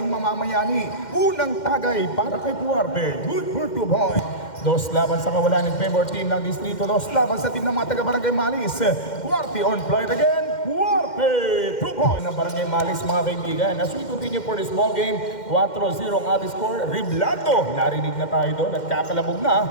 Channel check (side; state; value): right; late; 2.1 ms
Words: mamamayani? Unang tagay para kay Duarte, good for 2 points. Dos laban sa kawalan ng favor team ng Distrito, dos laban sa team ng mga taga-barangay Malis. Duarte on flight again, Duarte, 2 points ng barangay Malis mga kaibigan. As we continue for this ball game, 4-0 ang ating score. Riblando, narinig na tayo doon at kakalabog